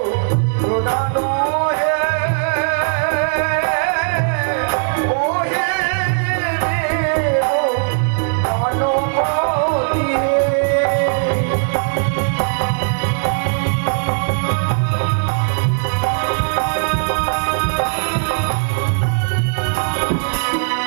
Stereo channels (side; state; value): left; silent; digital silence